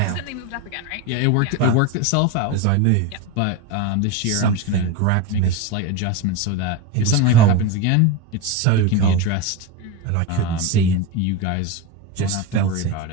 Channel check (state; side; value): different; both; correlation 0.06